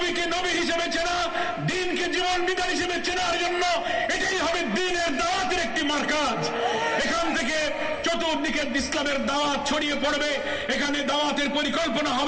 নবী হিসেবে চেনা, দ্বীনকে জীবন বিধান হিসেবে চেনার জন্য এটাই হবে দ্বীনের দাওয়াতের একটি মারকাজ। এখান থেকে চতুর্দিকে ইসলামের দাওয়াত ছড়িয়ে পড়বে। এখানে দাওয়াতের পরিকল্পনা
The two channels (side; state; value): both; identical; correlation 1.00